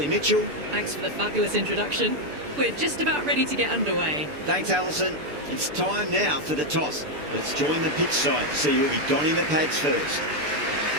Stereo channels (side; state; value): left; late; 6.8 ms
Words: Mitchell. Thanks for the fabulous introduction. We're just about ready to get underway. Thanks, Alison. It's time now for the toss. Let's join the pitch side to see who'll be donning the pads first.